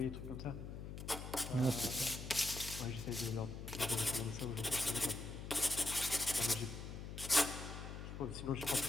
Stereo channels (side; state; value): left; noise; hum, 8 dB below the sound